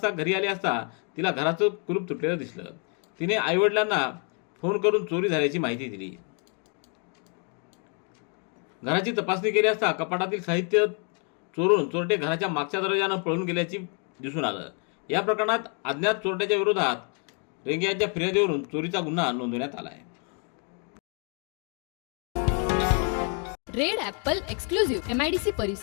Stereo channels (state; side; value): quieter; right; 38.8 dB